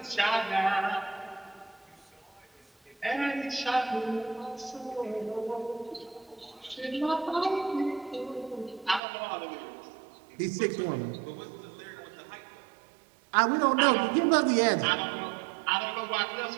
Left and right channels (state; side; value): drops out; left; at 9.0 s